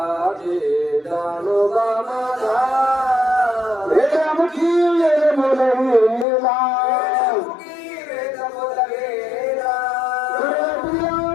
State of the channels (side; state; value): right; drops out; at 6.2 s